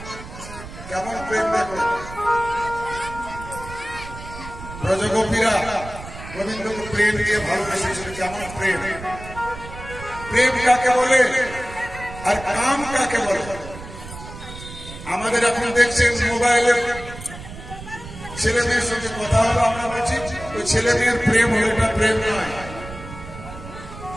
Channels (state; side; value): noise; right; rumble, 13 dB below the sound